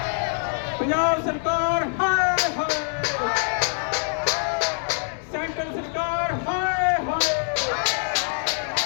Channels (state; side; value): silent; right; 56 dB below the other